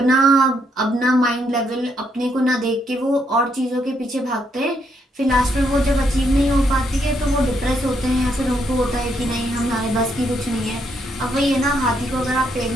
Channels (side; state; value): both; normal; correlation 0.75